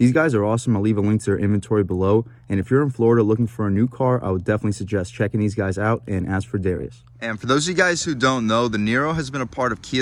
guys are awesome. I'll leave a link to their inventory below. And if you're in Florida looking for a new car, I would definitely suggest checking these guys out and ask for Darius. And for those of you guys who don't know, the Niro has been a part of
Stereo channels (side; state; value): both; identical; correlation 1.00